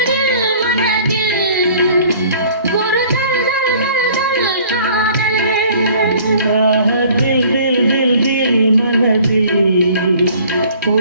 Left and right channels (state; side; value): inverted; both; correlation -0.52